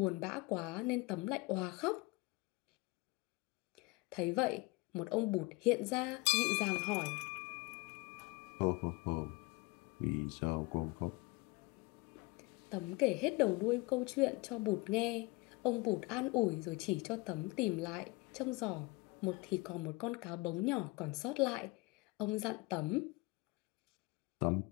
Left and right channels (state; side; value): quieter; right; 24.3 dB